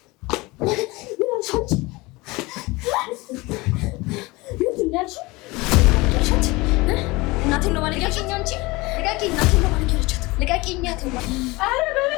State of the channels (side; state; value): right; quieter; 22.9 dB